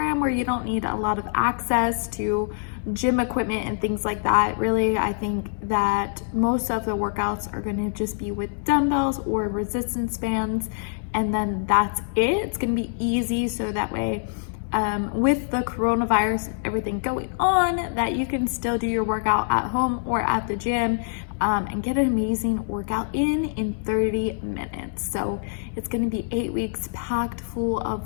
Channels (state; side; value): silent; right; digital silence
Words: where you don't need a lot of access to gym equipment and things like that. Really, I think that most of the workouts are going to just be with dumbbells or resistance bands, and then that's it. It's going to be easy, so that way with the coronavirus, everything going on, that you can still do your workout at home or at the gym, and get an amazing workout in 30 minutes. So it's going to be 8 weeks packed full